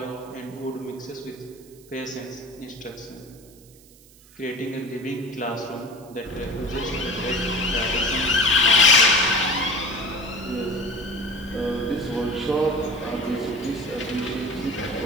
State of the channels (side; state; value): right; noise; hiss, 25 dB below the sound